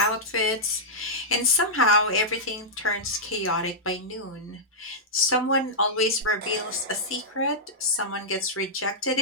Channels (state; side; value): normal; both; correlation -0.10